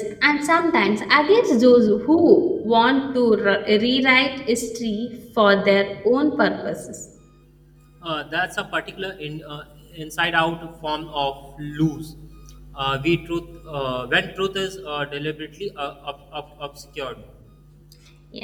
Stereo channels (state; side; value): identical; both; correlation 1.00